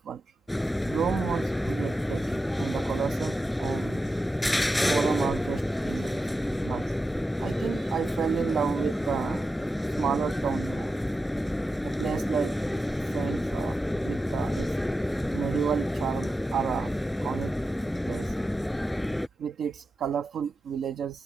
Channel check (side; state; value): both; normal; correlation 0.90